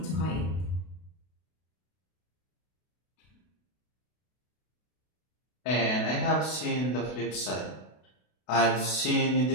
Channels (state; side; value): late; right; 32 ms